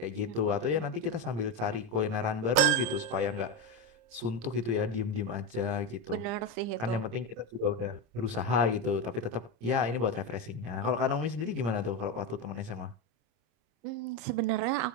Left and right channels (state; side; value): late; left; 26 ms